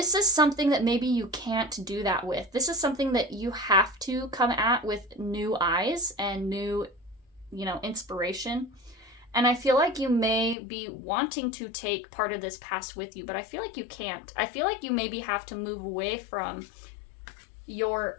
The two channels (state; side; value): drops out; right; at 10.6 s